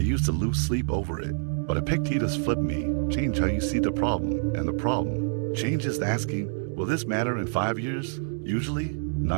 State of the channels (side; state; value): left; silent; digital silence